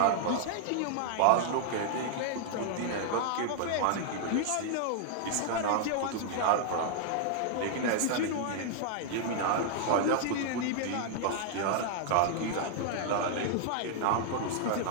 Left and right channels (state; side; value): different; both; correlation -0.01